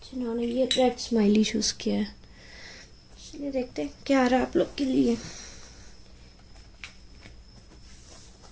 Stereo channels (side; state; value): both; identical; correlation 1.00